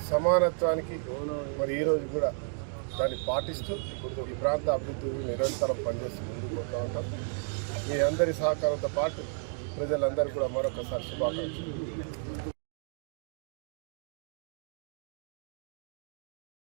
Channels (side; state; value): left; silent; 56 dB below the other